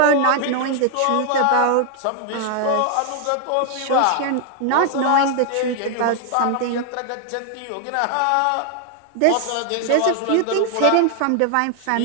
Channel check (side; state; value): both; different; correlation 0.00